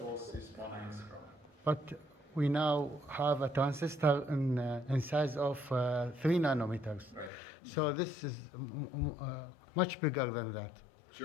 is 1 angstrom. But we now have a transistor in size of 3 nanometers. Right. So this is much bigger than that.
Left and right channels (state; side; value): drops out; right; at 7.3 s